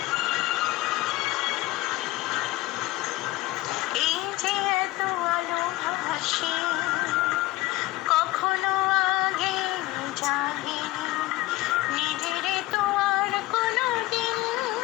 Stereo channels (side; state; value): right; quieter; 18.2 dB